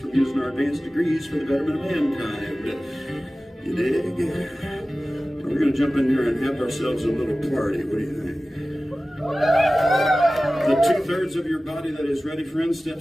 using our advanced degrees for the betterment of mankind. You dig? We're going to jump in here and have ourselves a little party. What do you think? The 2/3 of your body that is ready, friend,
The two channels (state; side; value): normal; both; correlation 0.96